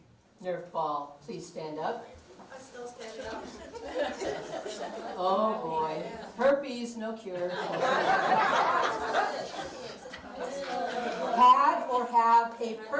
Nerf ball, please stand up. I'm still standing up. Oh boy, herpes, no cure. Had or have a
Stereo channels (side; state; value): both; identical; correlation 1.00